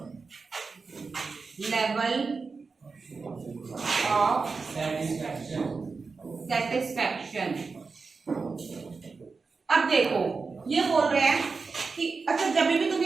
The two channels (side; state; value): left; quieter; 4.5 dB